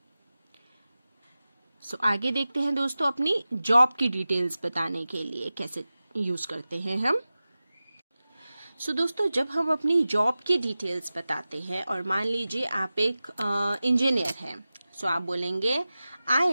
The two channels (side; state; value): both; inverted; correlation -0.96